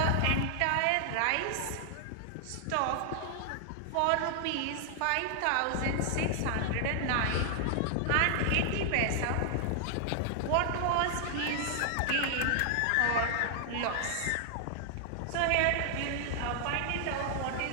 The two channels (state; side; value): different; both; correlation 0.00